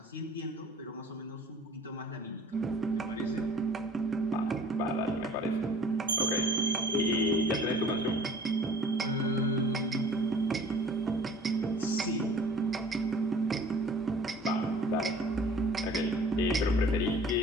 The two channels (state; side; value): normal; both; correlation 0.49